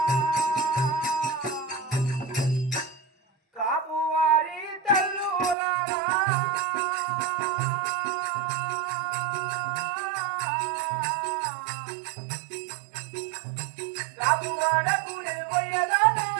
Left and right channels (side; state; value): left; drops out; at 5.6 s